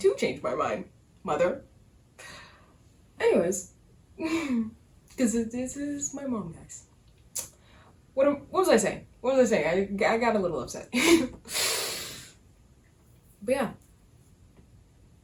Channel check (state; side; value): identical; both; correlation 1.00